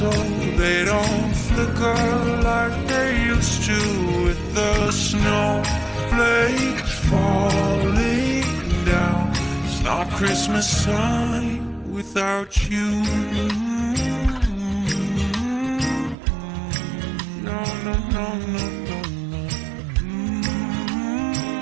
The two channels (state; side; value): drops out; left; at 16.2 s